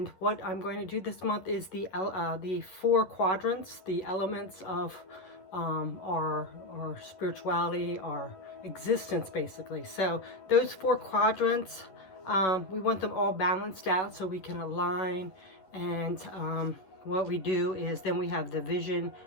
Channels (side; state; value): right; late; 11 ms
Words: what I'm going to do this month is the four quadrants, the elements of our spirituality, our existence, basically. So those four quadrants, we want them all balanced out so we can align. And what we do is then we have the vision,